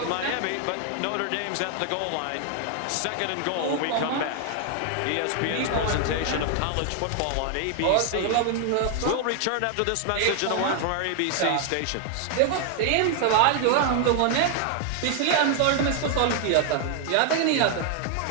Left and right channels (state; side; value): different; both; correlation 0.00